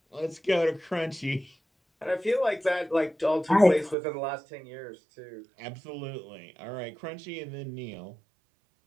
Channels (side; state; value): left; drops out; at 4.0 s